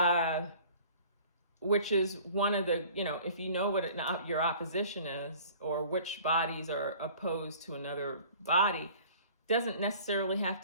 which is one of the, if you know what your opposition is, or which bodies are opposed to another body, doesn't necessarily have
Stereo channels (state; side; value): inverted; both; correlation -0.48